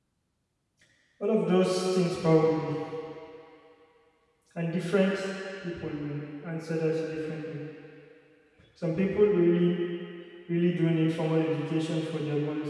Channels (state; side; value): identical; both; correlation 1.00